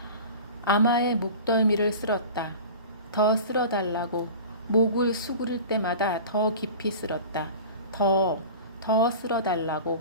아마의 목덜미를 쓸었다. 더 쓸어달라고. 목을 수그릴 때마다 더 깊이 쓸었다. 더 쓸어달라고.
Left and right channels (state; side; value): inverted; both; correlation -0.37